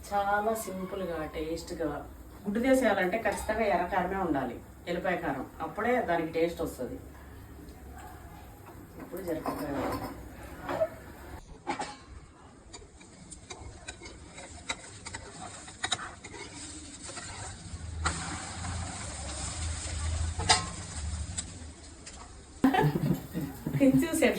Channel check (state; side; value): identical; both; correlation 1.00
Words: చాలా సింపుల్గా టేస్ట్గా గుడ్డు చేసేయాలంటే ఖచ్చితంగా ఎర్రకారమే ఉండాలి, ఎల్లిపాయ కారం. అప్పుడే దానికి టేస్ట్ వస్తుంది. ఇప్పుడు జరగదు. చూసి